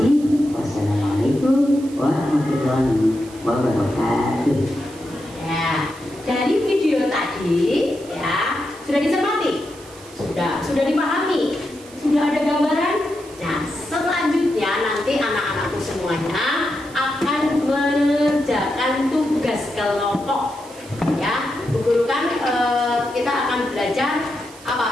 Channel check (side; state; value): right; noise; hiss, 21 dB below the sound